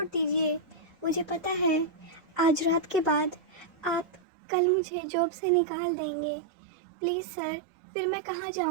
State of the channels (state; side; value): drops out; left; at 4.2 s